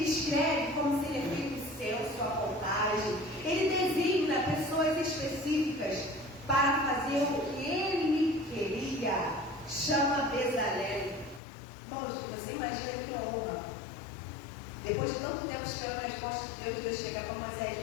como seria feito o censo, a contagem. Ele designa pessoas específicas para fazer o que ele queria. Chama Bezalel. Irmãos, você imagina que honra. Depois de tanto tempo esperando a resposta de Deus, Deus chega para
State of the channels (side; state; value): right; drops out; at 11.4 s